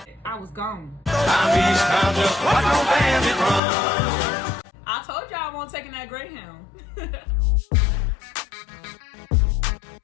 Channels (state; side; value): drops out; right; at 3.6 s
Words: I was gone. I'm Eastbound, just like no bandit run. I told y'all I won't taking that Greyhound.